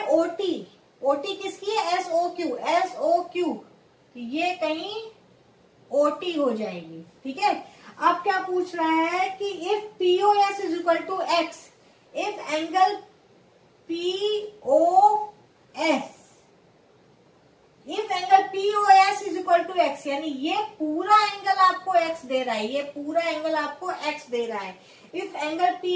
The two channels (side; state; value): both; identical; correlation 1.00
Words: OT, OT किसकी है SOQ, SOQ ये कहीं OT हो जाएगी, ठीक है। अब क्या पूछ रहा है कि if POS is equal to x, if angle POS is equal to x, यानी ये पूरा एंगल आपको x दे रहा है, ये पूरा एंगल आपको x दे रहा है। If angle